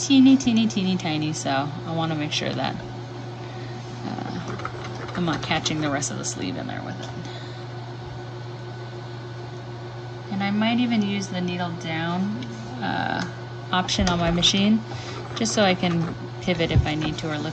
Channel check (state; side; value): identical; both; correlation 1.00